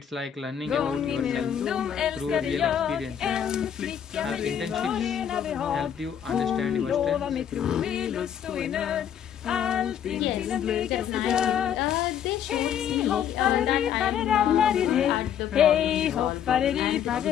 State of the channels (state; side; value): quieter; right; 9.1 dB